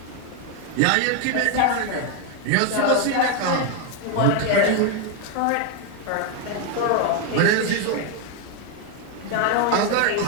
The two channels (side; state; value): both; different; correlation 0.01